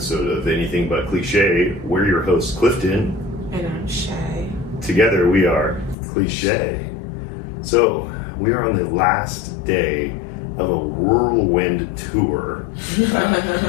of Anything But CliShay. We're your hosts, Clifton. And I'm Shay. Together we are CliShay. So, we are on the last day of a whirlwind tour.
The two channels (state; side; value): drops out; right; at 6.0 s